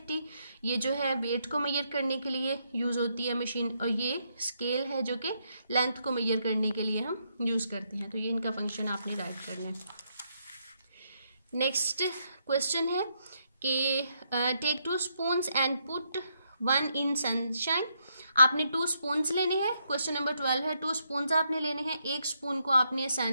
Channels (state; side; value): inverted; both; correlation -0.77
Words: ये जो है वेट को मेजर करने के लिए यूज़ होती है मशीन, और ये स्केल है जो कि लेंथ को मेजर करने के लिए हम यूज़ करते हैं। तो ये इनका फंक्शन आपने राइट करना है। नेक्स्ट क्वेश्चन है कि take 2 spoons and put 1 in sunshine. आपने 2 स्पून्स लेने हैं। क्वेश्चन नंबर 12 है 2 स्पून्स आपने लेने हैं। एक स्पून को आपने